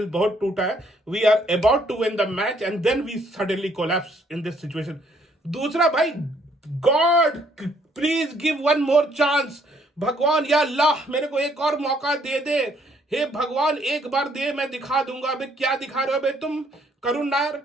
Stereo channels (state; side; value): normal; both; correlation 0.67